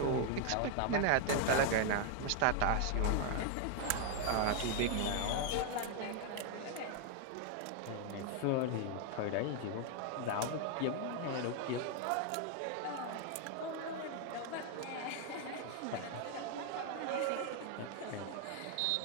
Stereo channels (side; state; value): both; different; correlation 0.00